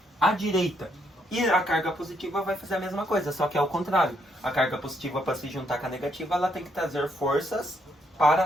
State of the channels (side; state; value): both; normal; correlation 0.73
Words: À direita. E a carga positiva vai fazer a mesma coisa, só que é o contrário. A carga positiva, para se juntar com a negativa, ela tem que trazer forças